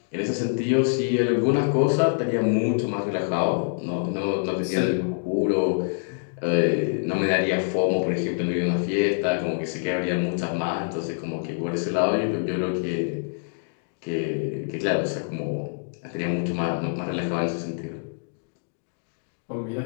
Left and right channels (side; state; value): right; silent; digital silence